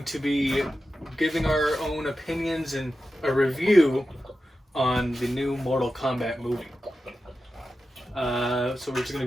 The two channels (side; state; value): both; normal; correlation 0.92